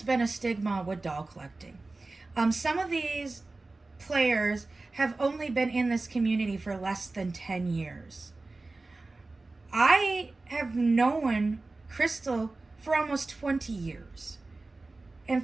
been a stigma with doll collecting. Some of these players have only been in this community for less than 10 years. I have known Crystal for almost 20 years. In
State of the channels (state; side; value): quieter; left; 3.3 dB